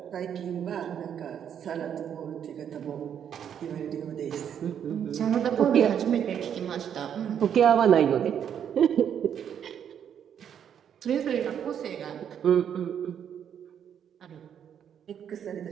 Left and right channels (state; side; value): quieter; left; 8.8 dB